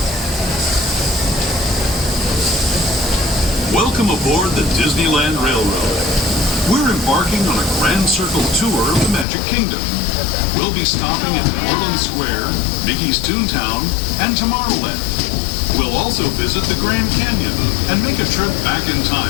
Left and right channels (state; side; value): drops out; right; at 9.2 s